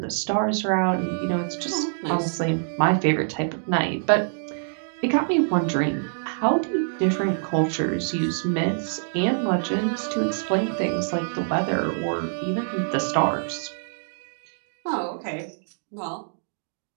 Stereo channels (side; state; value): left; silent; digital silence